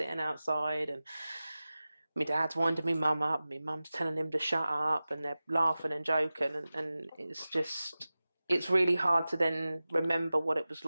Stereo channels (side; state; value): both; inverted; correlation -0.96